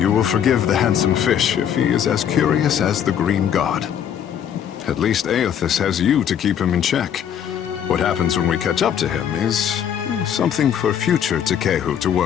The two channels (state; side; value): quieter; right; 9.1 dB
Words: will forgive the handsome fish if he is as curious as the green god. At least Aethys has you to keep him in check. What happens when we catch up to him is something for future Tekehu to